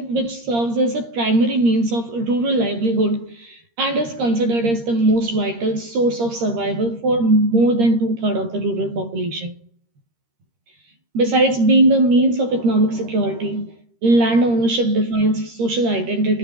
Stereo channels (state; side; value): late; left; 13 ms